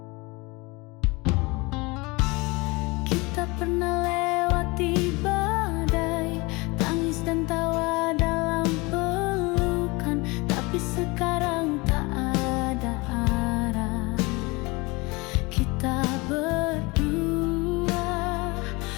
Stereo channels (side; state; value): right; quieter; 25.2 dB